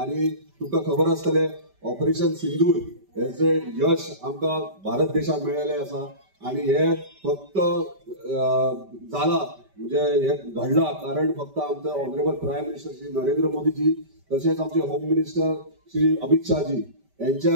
आणि तुमकां खबर आसतलें ऑपरेशन सिंदूर हेचे यश आमकां भारत देशाक मेळिल्लें आसा आणि हे फक्त जाला म्हणजे हे घडला कारण फक्त आमचे honourable prime minister Shri Narendra Modiji तसेच आमचे होम मिनिस्टर श्री अमित शाहजी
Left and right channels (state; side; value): late; left; 5.1 ms